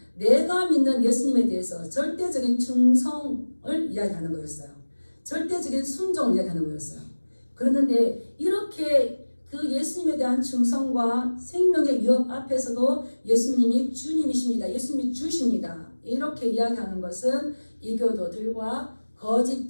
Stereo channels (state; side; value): inverted; both; correlation -1.00